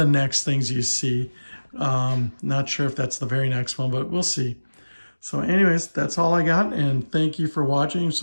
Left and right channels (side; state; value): both; inverted; correlation -1.00